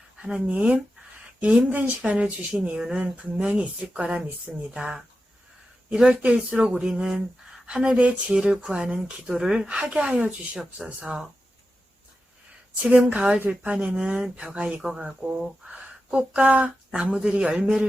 하나님, 이 힘든 시간을 주신 이유는 분명히 있을 거라 믿습니다. 이럴 때일수록 우리는 하늘의 지혜를 구하는 기도를 하게 하여 주시옵소서. 지금 가을 들판에는 벼가 익어가고 꽃과 나무들이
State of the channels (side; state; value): both; normal; correlation 0.91